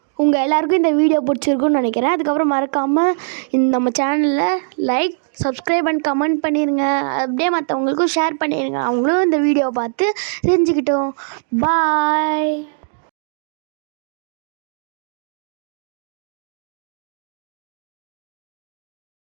உங்கள் எல்லாருக்கும் இந்த வீடியோ பிடிச்சிருக்குன்னு நினைக்கிறேன். அதுக்கப்புறம் மறக்காமல் நம்ம சேனலில் லைக், சப்ஸ்கிரைப் அண்ட் கமெண்ட் பண்ணிடுங்க. அப்படியே மற்றவங்களுக்கும் ஷேர் பண்ணிடுங்க. அவங்களும் இந்த வீடியோ பார்த்து தெரிஞ்சுக்கிட்டோம். பாய்.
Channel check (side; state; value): left; silent; digital silence